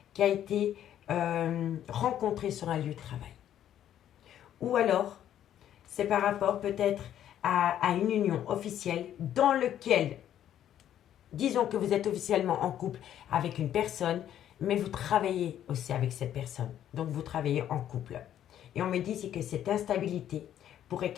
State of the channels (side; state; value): right; quieter; 10.9 dB